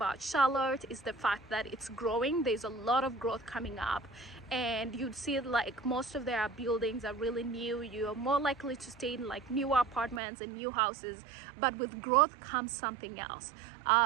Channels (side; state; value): left; drops out; at 10.2 s